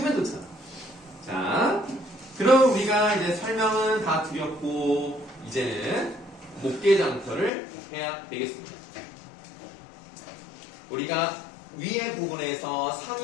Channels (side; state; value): right; drops out; at 7.5 s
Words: 좋잖아. 자, 그럼 우리가 이제 설명은 다 드렸고 이제는 목계장터를 해야 되겠습니다. 우리가 위에 부분에서